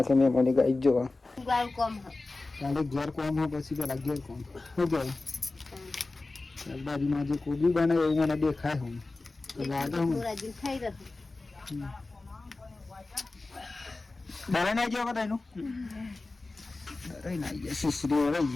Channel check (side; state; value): right; quieter; 3.3 dB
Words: મેં મને ગાઈ જો ઘેર કોમ હોય પછી પેલા ઘેર કોમ શું કહેવાય શાકભાજીમાં જે કોબી બને એવું મને દેખાય હું ડરે ના ગયો બધા એનું ડરે ના ગયા સુસરી રહી